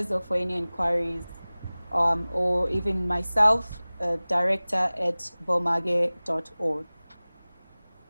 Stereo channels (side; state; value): both; inverted; correlation -0.99